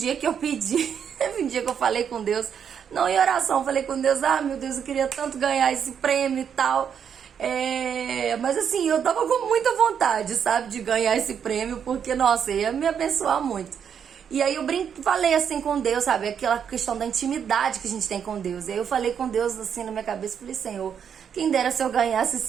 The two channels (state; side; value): quieter; left; 7.8 dB